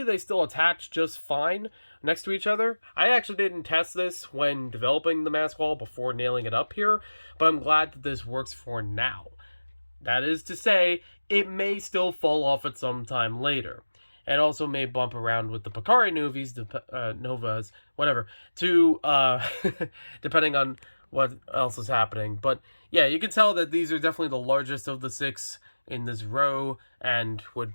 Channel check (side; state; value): both; inverted; correlation -1.00